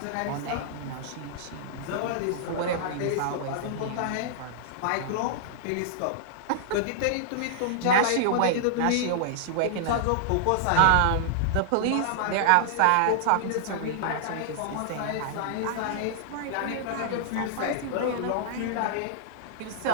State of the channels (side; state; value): both; different; correlation -0.01